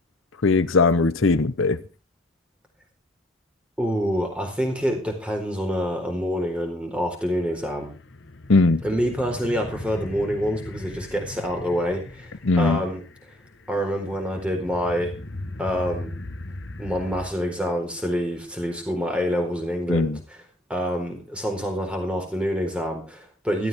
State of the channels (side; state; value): both; normal; correlation 0.62